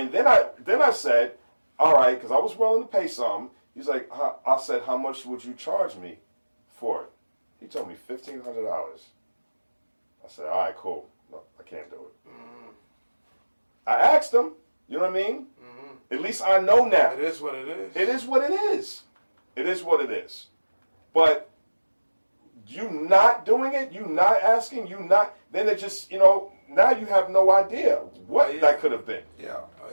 then I said, all right, because I was willing to pay some. He's like, I said, how much would you charge me for it? He told me $1,500. I said, all right, cool. No, I can't do it. I asked him, you know what I mean? At least I know now. It is what it is. It is what it is. It is what it is. But you not doing it, you not asking, then it just, you know, now you have no idea what that could have been. Yeah.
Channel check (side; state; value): both; inverted; correlation -1.00